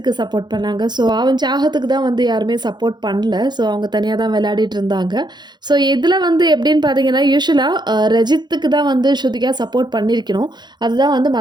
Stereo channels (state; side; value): late; left; 0.21 ms